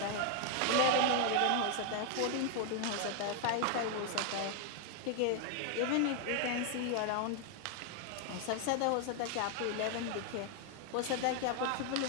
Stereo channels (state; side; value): different; both; correlation 0.00